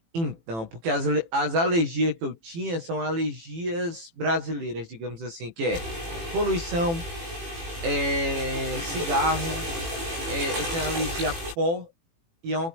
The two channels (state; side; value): late; left; 18 ms